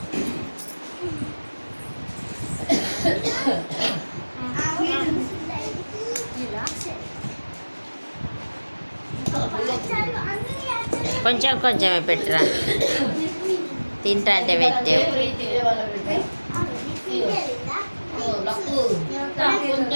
కొంచెం కొంచెమే పెట్టరా, తింటా అంటే పెట్టావు.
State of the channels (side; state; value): both; inverted; correlation -1.00